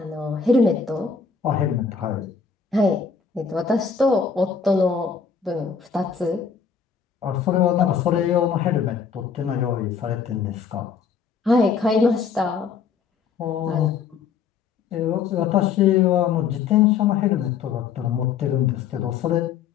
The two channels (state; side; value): quieter; right; 6.2 dB